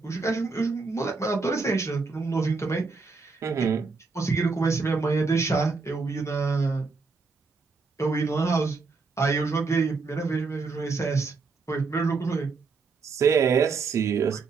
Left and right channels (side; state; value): left; quieter; 4.4 dB